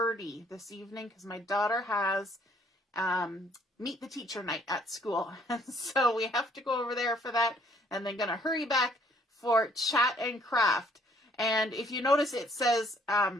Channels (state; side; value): normal; both; correlation 0.63